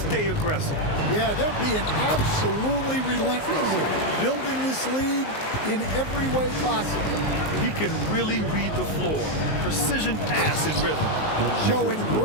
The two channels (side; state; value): right; late; 19 ms